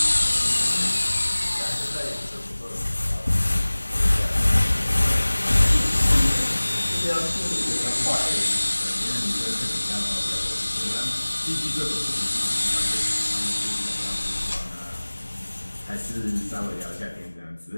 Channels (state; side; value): inverted; both; correlation -1.00